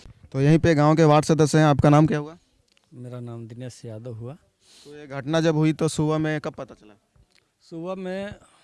तो यहीं पे गांव के वार्ड सदस्य हैं। आपका नाम क्या हुआ? मेरा नाम दिनेश यादव हुआ। तो ये घटना जब हुई तो सुबह में कब पता चला? सुबह में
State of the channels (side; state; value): both; identical; correlation 1.00